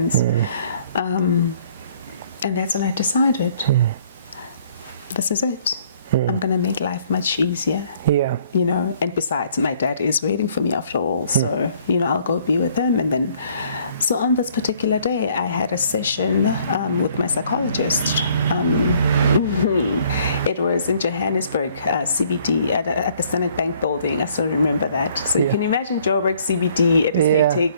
And that's when I decided, this is it. I'm going to make life much easier. You know, and besides, my dad is waiting for me after all. So, you know, I'll go be with him. And then, so on this particular day, I had a session with my psychologist. It was in Johannesburg, CBD, at the Standard Bank building. I still remember that. So you can imagine Joburg, CBD, it is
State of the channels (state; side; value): inverted; both; correlation -0.60